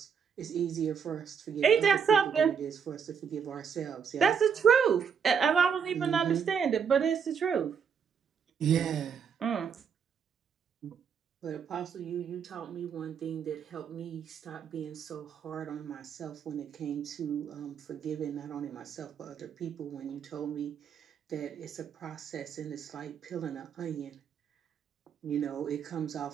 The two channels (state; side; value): quieter; left; 7.0 dB